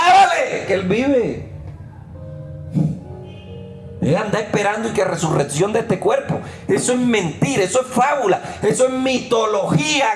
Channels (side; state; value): both; identical; correlation 1.00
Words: que Él vive. Él anda esperando y que resurrección de este cuerpo. Eso es mentira, eso es fábula, eso es mitología